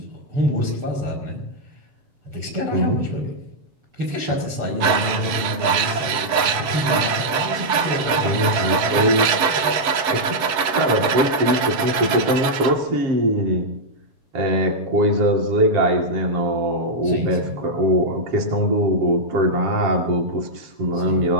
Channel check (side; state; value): left; late; 7.2 ms